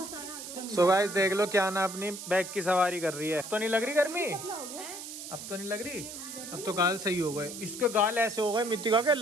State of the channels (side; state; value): right; noise; hiss, 10 dB below the sound